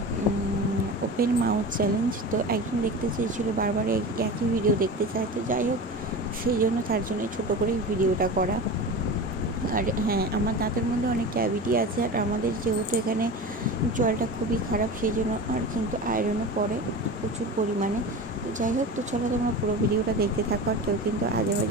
ওপেন মাউথ চ্যালেঞ্জ। তো একজন দেখতে চেয়েছিলো, বারবার একই ভিডিও দেখতে চায়। তো যাই হোক, সেই জন্য তার জন্যই ছোটো করেই ভিডিওটা করা। আর হ্যাঁ, আমার দাঁতের মধ্যে অনেক ক্যাভিটি আছে, আর আমাদের যেহেতু এখানে জলটা খুবই খারাপ, সেই জন্য আর কিন্তু আয়রনও পড়ে প্রচুর পরিমাণে। তো যাই হোক, তো চলো তোমরা পুরো ভিডিওটা দেখতে থাকো, আর কেউ কিন্তু আজে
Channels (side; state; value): both; normal; correlation 0.30